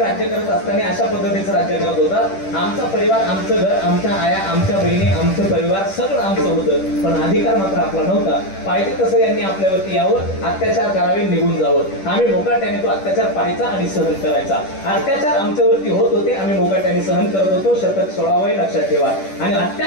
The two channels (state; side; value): late; right; 10 ms